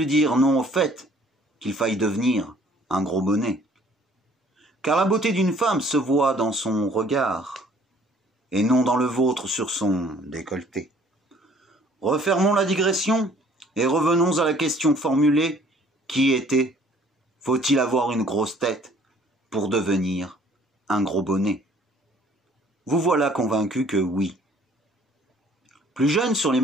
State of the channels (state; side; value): normal; both; correlation 0.57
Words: dire non au fait qu'il faille devenir un gros bonnet. Car la beauté d'une femme se voit dans son regard, et non dans le vôtre sur son décolleté. Refermons la digression et revenons à la question formulée qui était « Faut-il avoir une grosse tête pour devenir un gros bonnet ?» Vous voilà convaincu que oui. Plus jeune sur les